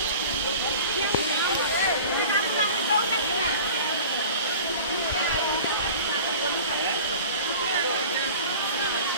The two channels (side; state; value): both; inverted; correlation -0.41